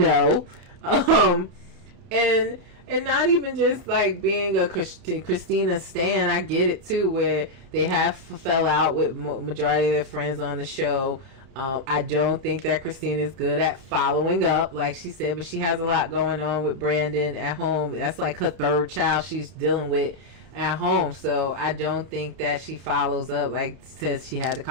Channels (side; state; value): left; late; 31 ms